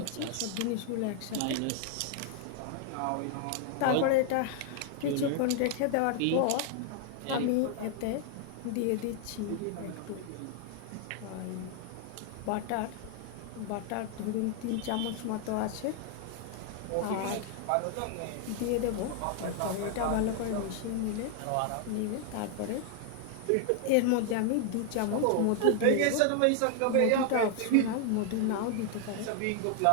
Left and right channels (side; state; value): both; different; correlation 0.00